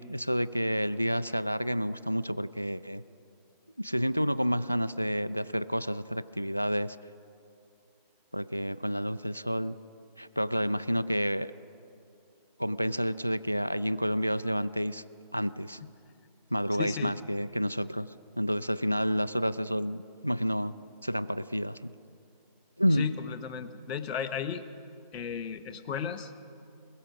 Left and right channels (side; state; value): both; inverted; correlation -0.93